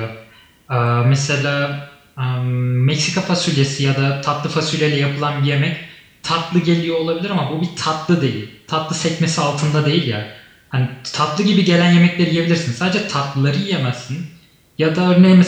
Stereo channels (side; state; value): both; identical; correlation 1.00